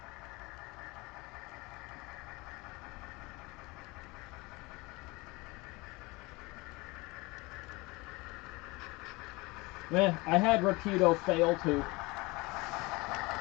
I had Rapido fail too.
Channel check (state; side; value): quieter; right; 24.1 dB